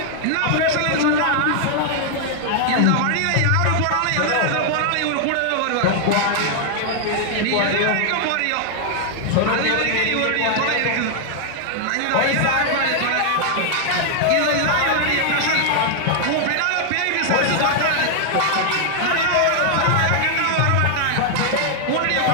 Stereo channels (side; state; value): both; different; correlation 0.00